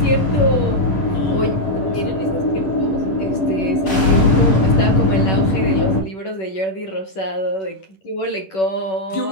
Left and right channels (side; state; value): right; late; 10 ms